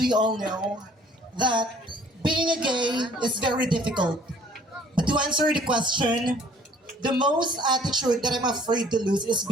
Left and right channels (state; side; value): normal; both; correlation 0.56